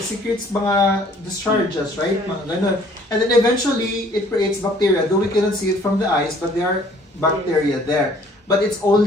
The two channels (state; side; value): normal; both; correlation 0.57